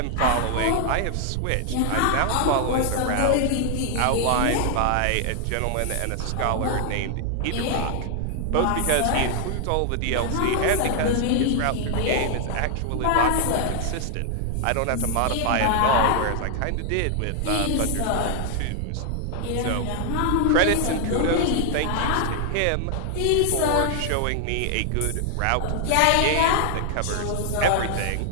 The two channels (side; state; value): both; different; correlation 0.00